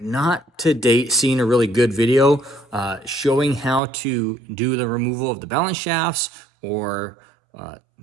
not to date seen a really good video showing how to do the removal of the balance shafts or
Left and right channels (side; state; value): left; drops out; at 3.8 s